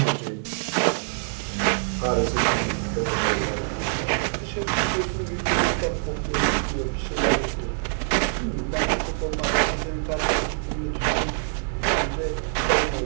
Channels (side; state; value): left; silent; digital silence